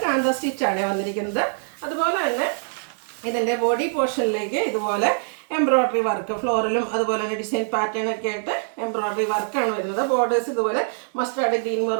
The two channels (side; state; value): left; silent; digital silence